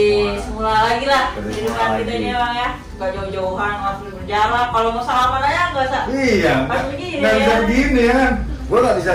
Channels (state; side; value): identical; both; correlation 1.00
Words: semula lagi lah Seperti kehidupan semula kita lagi. ini bang ya. Gak jauh-jauhan, nggak perlu berjalan. Kalau mau salaman aja nggak usah. Iya, Pas begini nggak bisa ya. begini ya kan? Gue nggak bisa